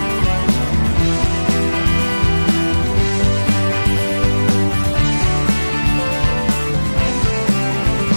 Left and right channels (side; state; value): both; inverted; correlation -1.00